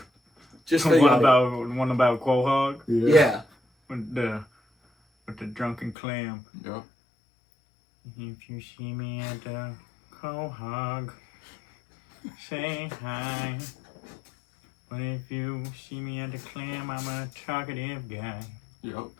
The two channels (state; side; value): drops out; right; at 6.0 s